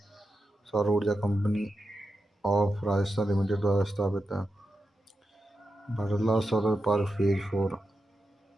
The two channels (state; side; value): normal; both; correlation 0.89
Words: सौर ऊर्जा कंपनी ऑफ राजस्थान लिमिटेड द्वारा स्थापित है। Bhadla solar park phase 4